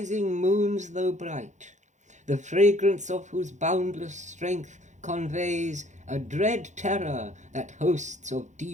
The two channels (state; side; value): late; left; 0.35 ms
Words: moons though bright, the fragrance of whose boundless strength conveys a dread terror that hosts of